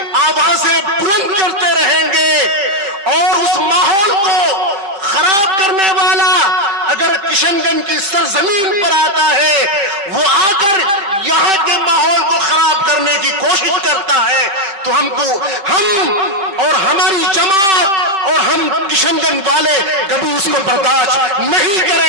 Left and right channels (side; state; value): left; late; 5.2 ms